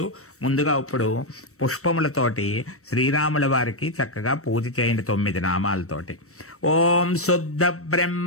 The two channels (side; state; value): right; late; 0.64 ms